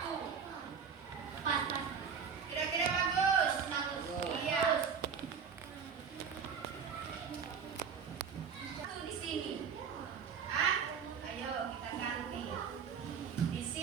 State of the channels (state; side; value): quieter; left; 6.6 dB